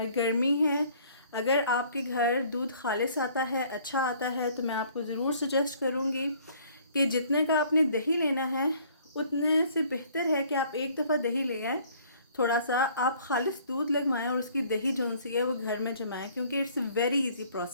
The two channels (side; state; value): both; inverted; correlation -0.57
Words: गर्मी है। अगर आपके घर दूध खालिस आता है, अच्छा आता है, तो मैं आपको ज़रूर सजेस्ट करूँगी कि जितने का आपने दही लेना है उतने से बेहतर है कि आप एक दफ़ा दही ले आएँ, थोड़ा सा आप खालिस दूध लगवाएं और उसकी दही जो सी है वो घर में जमाएं, क्योंकि इट्स वेरी इजी